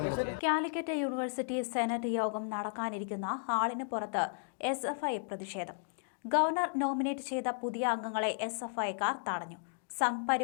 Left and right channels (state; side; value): silent; right; digital silence